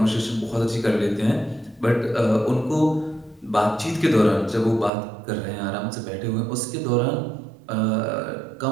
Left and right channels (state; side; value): drops out; left; at 4.9 s